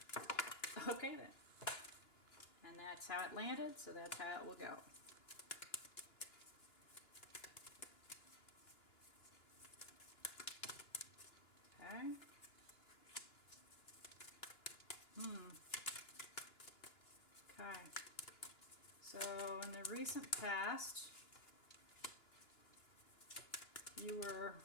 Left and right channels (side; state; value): right; late; 2.9 ms